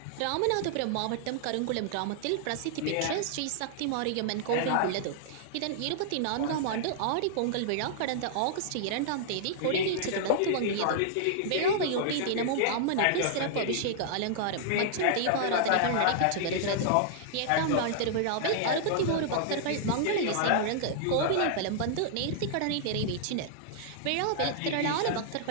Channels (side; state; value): both; different; correlation -0.01